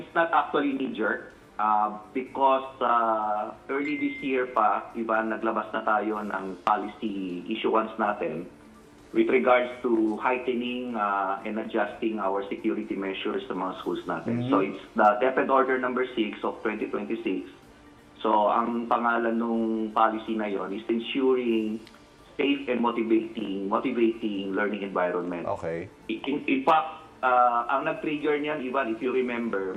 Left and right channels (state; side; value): identical; both; correlation 1.00